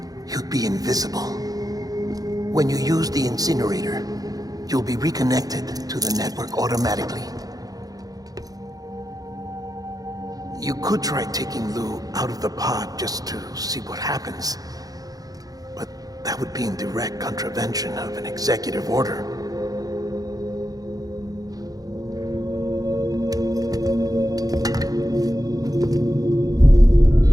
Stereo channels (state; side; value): late; left; 0.18 ms